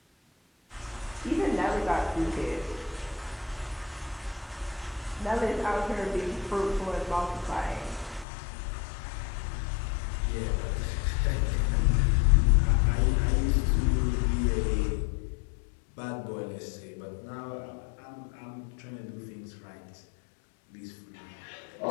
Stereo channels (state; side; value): drops out; right; at 8.2 s